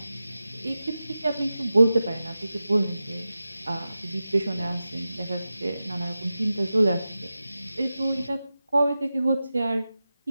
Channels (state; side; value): inverted; both; correlation -0.93